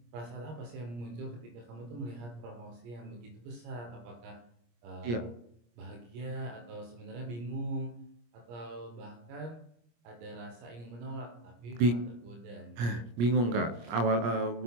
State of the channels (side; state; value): left; late; 25 ms